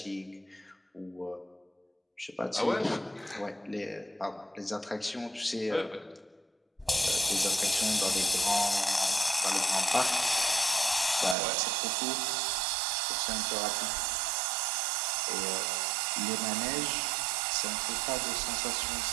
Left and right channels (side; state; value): left; drops out; at 11.4 s